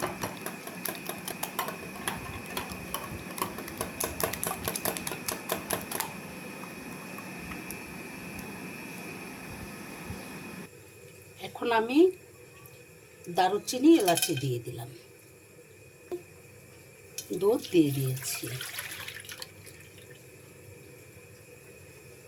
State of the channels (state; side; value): identical; both; correlation 1.00